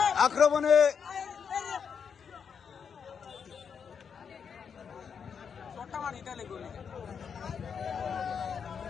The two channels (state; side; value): quieter; right; 6.7 dB